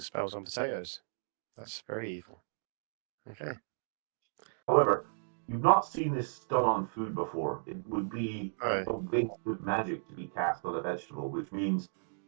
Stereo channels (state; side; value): silent; left; digital silence